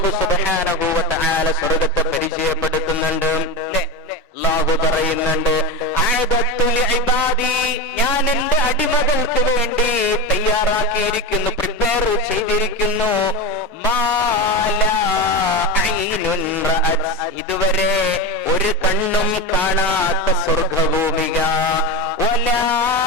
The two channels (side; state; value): both; normal; correlation 0.20